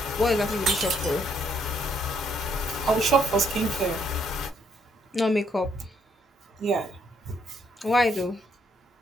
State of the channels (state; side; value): normal; both; correlation 0.71